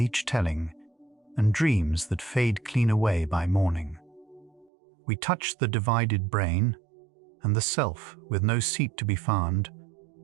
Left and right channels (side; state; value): left; drops out; at 4.7 s